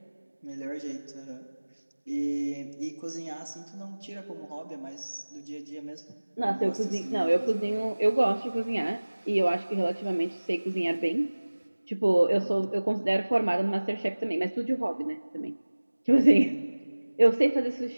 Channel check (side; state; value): both; inverted; correlation -1.00